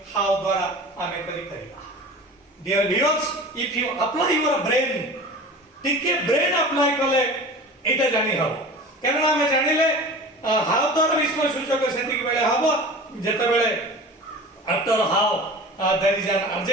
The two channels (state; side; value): normal; both; correlation 0.37